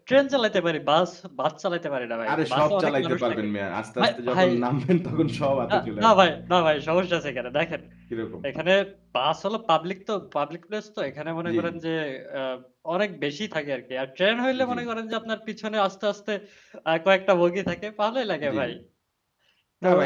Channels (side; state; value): both; identical; correlation 1.00